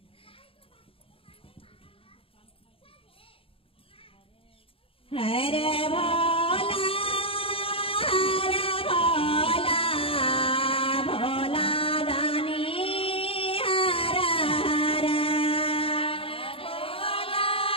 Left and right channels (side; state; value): right; late; 0.27 ms